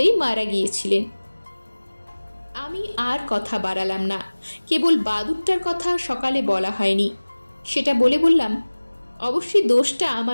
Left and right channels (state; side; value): inverted; both; correlation -1.00